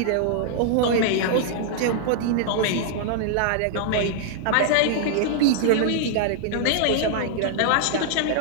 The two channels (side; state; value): both; different; correlation 0.00